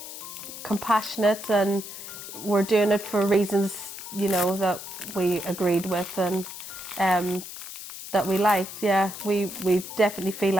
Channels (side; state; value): left; noise; hiss, 11 dB below the sound